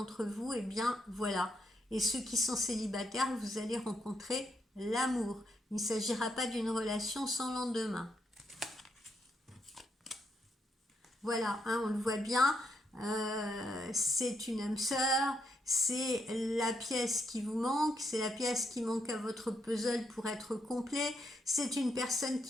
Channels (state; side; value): normal; both; correlation 0.78